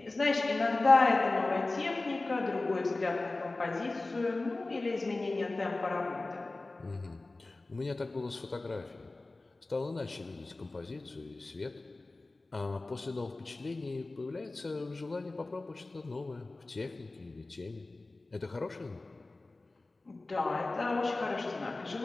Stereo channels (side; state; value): right; quieter; 3.1 dB